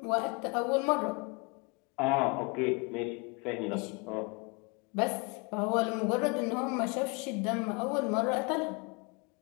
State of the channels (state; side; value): quieter; right; 30.5 dB